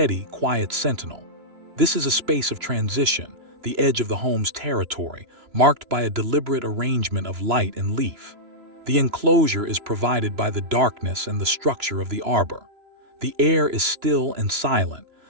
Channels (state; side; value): late; left; 3.0 ms